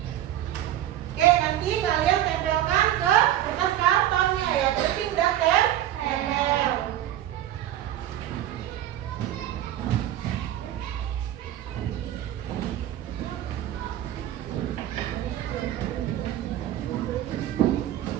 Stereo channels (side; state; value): left; quieter; 12.4 dB